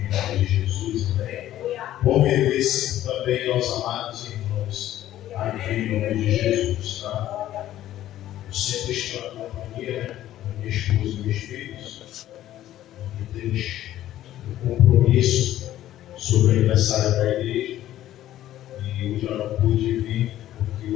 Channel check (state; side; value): quieter; right; 13.2 dB